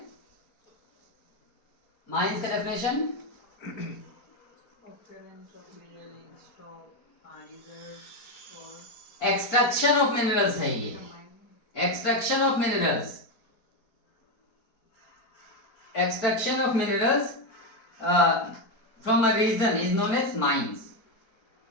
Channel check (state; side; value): late; right; 4.4 ms